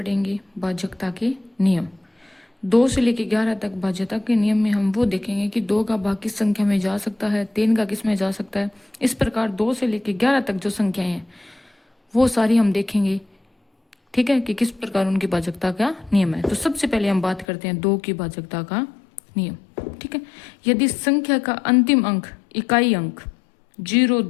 भाजकता के नियम। 2 से लेकर 11 तक भाज्यता के नियम में हम वो देखेंगे कि 2 का भाग किस संख्या में जा सकता है, 3 का किस में जा सकता है। इस प्रकार 2 से लेकर 11 तक जो संख्याएं हैं वो सारी हम देखेंगे। ठीक है, कि किस प्रकार उनकी भाजकता का नियम है। तो सबसे पहले हम बात करते हैं 2 की भाजकता का नियम। ठीक है, यदि संख्या का अंतिम अंक इकाई अंक 0,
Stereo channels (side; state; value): right; drops out; at 17.4 s